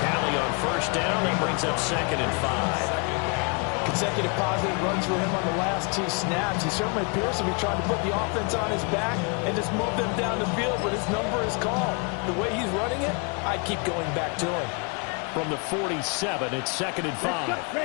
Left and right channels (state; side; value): quieter; right; 34.3 dB